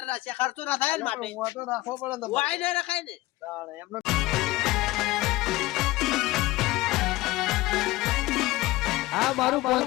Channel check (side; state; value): right; quieter; 19.1 dB